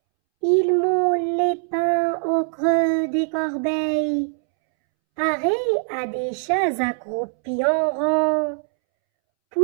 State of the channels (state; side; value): silent; left; 64 dB below the other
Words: Il moule les pains au creux des corbeilles, pareil à des chats accroupis en rang.